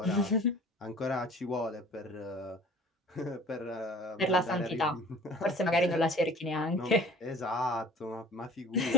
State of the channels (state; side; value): normal; both; correlation 0.45